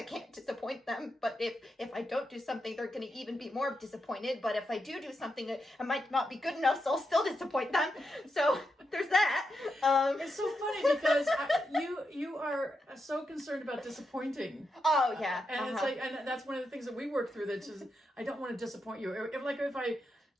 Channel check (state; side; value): normal; both; correlation 0.85